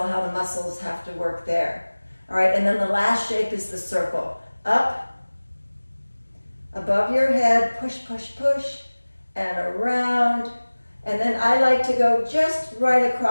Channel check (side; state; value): both; inverted; correlation -1.00